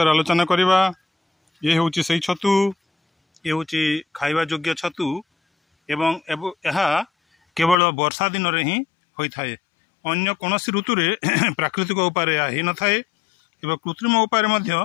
आलोचना करवा। ये हूँ से छतु, ये हूँ खाइबा योग्य छतु एवं यह केवल वर्षा दिन में ही होता है। अन्य कौन ऋतु रे प्राकृतिक उपाय हो न थाए एवं कृत्रिम उपाय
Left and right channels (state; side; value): drops out; right; at 7.8 s